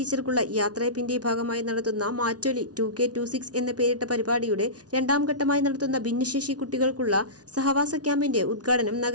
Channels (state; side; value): late; left; 0.68 ms